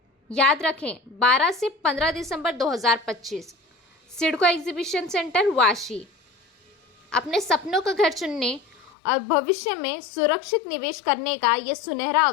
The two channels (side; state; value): right; drops out; at 8.9 s